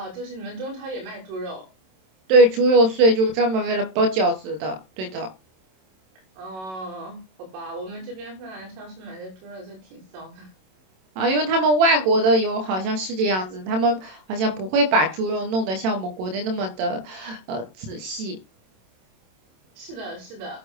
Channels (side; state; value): left; late; 27 ms